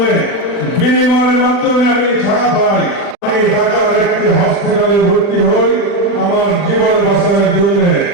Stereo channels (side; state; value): right; late; 40 ms